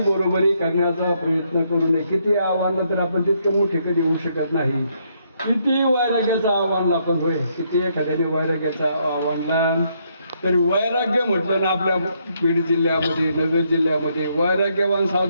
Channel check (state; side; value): inverted; both; correlation -0.74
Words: बरोबरी करण्याचा प्रयत्न करू नये. किती आव्हान तर आपण तितकं मोठे कधी होऊ शकत नाही. किती वैराग्याचं आव्हान आपण होय, किती एखाद्याने वैराग्याचा आव्हानला, तर वैराग्य म्हटलं ना आपल्या बीड जिल्ह्यामध्ये, नगर जिल्ह्यामध्ये वैराग्यवान